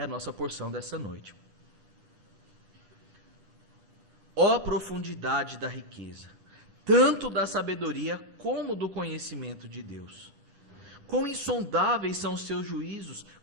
a nossa porção dessa noite. Ó profundidade da riqueza, tanto da sabedoria como do conhecimento de Deus. Quão insondáveis são os seus juízos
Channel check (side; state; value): left; late; 9.8 ms